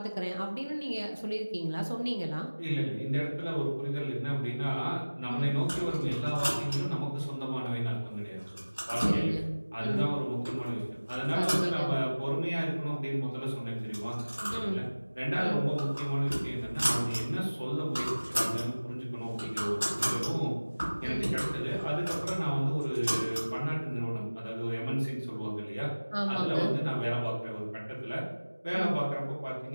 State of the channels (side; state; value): both; inverted; correlation -1.00